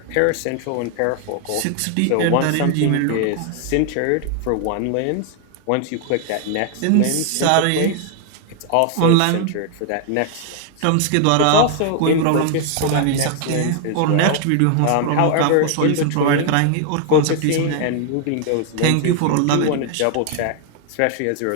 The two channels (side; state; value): both; different; correlation 0.00